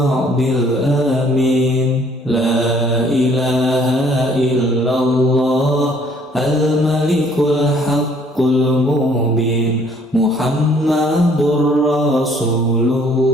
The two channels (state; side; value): normal; both; correlation 0.60